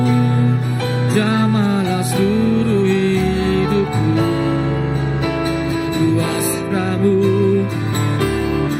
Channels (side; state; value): both; identical; correlation 1.00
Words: Jamahlah seluruh hidupku, kuasamu.